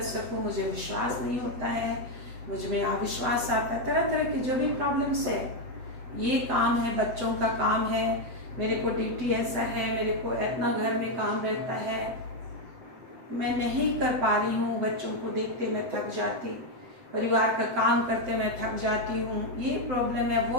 सकूं, मुझे विश्वास नहीं होता है, मुझ में अविश्वास आता है, तरह तरह की जो भी प्रॉब्लम्स है, ये काम है, बच्चों का काम है, मेरे को ड्यूटी ऐसा है, मेरे को इतना घर में काम रहता है, मैं नहीं कर पा रही हूँ, बच्चों को देखते मैं थक जाती, परिवार का काम करते मैं थक जाती हूँ, ये प्रॉब्लम है,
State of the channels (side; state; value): left; late; 7.9 ms